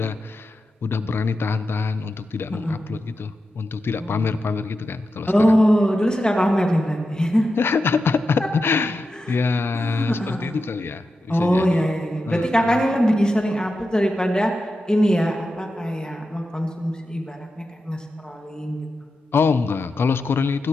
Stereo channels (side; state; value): both; normal; correlation 0.90